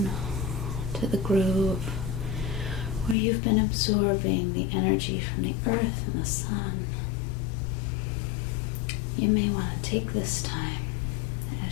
to the groove where you've been absorbing the energy from the earth and the sun, you may want to take this time,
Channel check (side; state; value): right; drops out; at 3.2 s